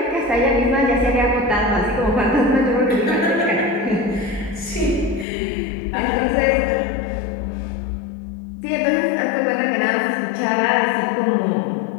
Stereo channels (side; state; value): right; drops out; at 5.2 s